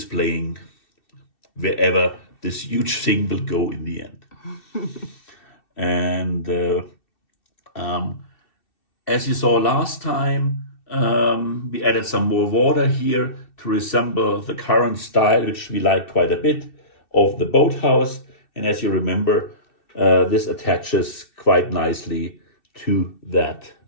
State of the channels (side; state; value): right; late; 2.7 ms